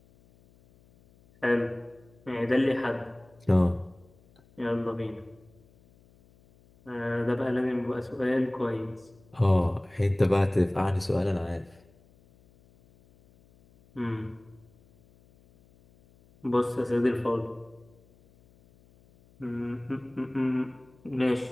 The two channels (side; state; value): left; noise; hum, 29 dB below the sound